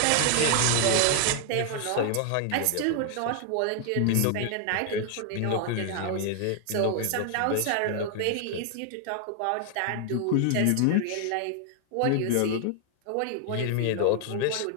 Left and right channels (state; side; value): different; both; correlation 0.00